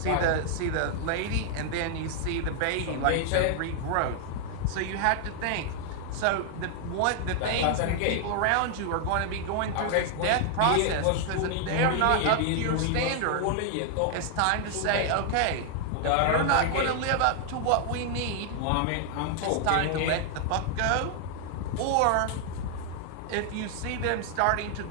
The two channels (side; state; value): both; different; correlation 0.00